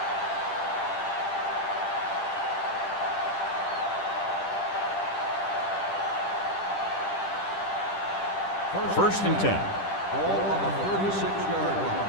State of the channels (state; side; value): late; right; 10 ms